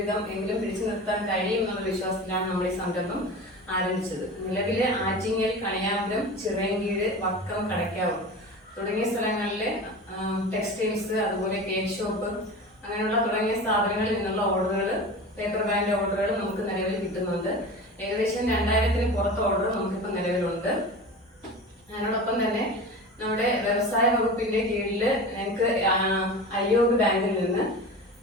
എങ്കിലും പിടിച്ചു നിർത്താൻ കഴിയും എന്നുള്ള വിശ്വാസത്തിലാണ് നമ്മൾ ഈ സംരംഭം ആരംഭിച്ചത്. നിലവിലെ ആറ്റിങ്ങൽ, കണിയാപുരം, ചിറയൻകീഴ്, വക്കം, കടയ്ക്കാവ് തുടങ്ങിയ സ്ഥലങ്ങളിലെ ടെക്സ്റ്റൈൽസ്, അതുപോലെ കേക്ക് ഷോപ്പ്, അങ്ങനെയുള്ള തുടങ്ങിയ സ്ഥാപനങ്ങളിൽ നിന്നുള്ള ഓർഡറുകൾ, പേപ്പർ ബാഗിന്റെ ഓർഡറുകൾ നമുക്ക് നിലവിൽ കിട്ടുന്നുണ്ട്. ഏകദേശം 2000-ന് പുറത്ത് ഓർഡർ നമുക്കിപ്പോൾ നിലവിലുണ്ട്. അതിനോടൊപ്പം തന്നെ നമ്മുടെ വ്യവസായ വകുപ്പിന്റെ കീഴിൽ ഞങ്ങൾക്ക് അയ്യോഗ് ബാങ്കിൽ നിന്ന്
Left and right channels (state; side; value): normal; both; correlation 0.32